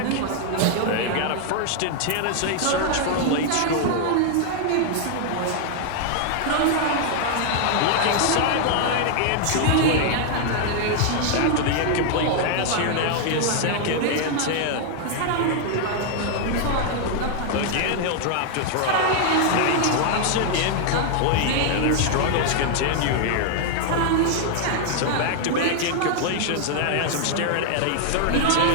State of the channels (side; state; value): both; different; correlation 0.00